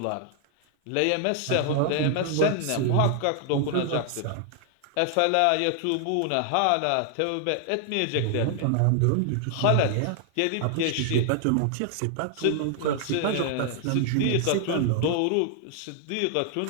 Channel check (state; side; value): different; both; correlation 0.00